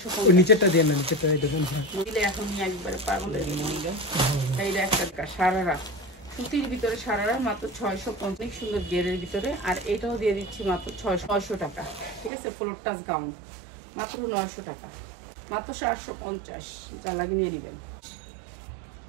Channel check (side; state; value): left; drops out; at 12.3 s